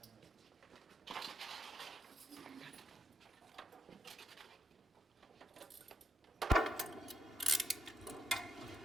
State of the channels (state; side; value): normal; both; correlation 0.78